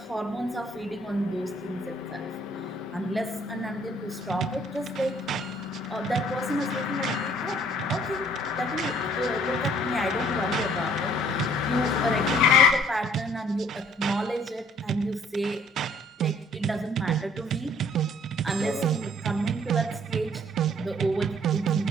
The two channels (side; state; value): both; normal; correlation 0.59